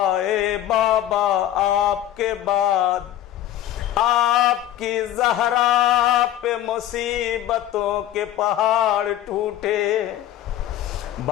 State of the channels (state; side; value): quieter; right; 12.4 dB